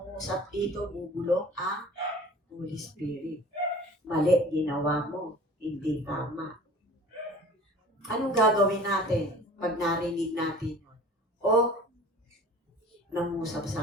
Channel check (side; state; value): both; normal; correlation 0.44